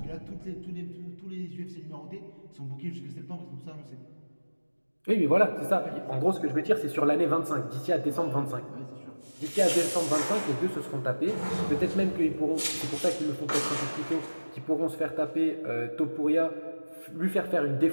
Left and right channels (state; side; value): inverted; both; correlation -1.00